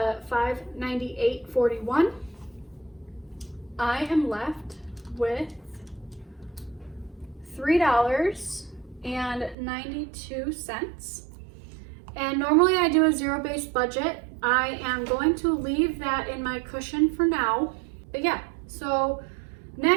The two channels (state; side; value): drops out; left; at 9.6 s